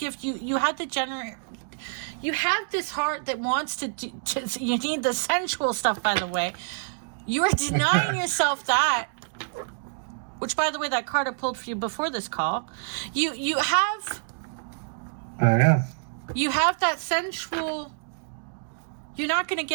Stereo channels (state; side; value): silent; left; digital silence